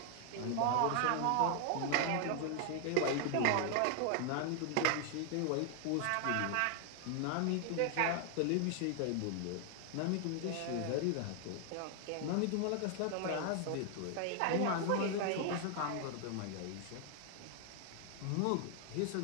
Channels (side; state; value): both; different; correlation 0.00